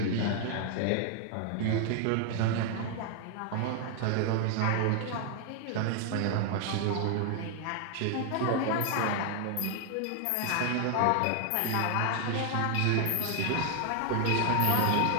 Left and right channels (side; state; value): both; different; correlation 0.00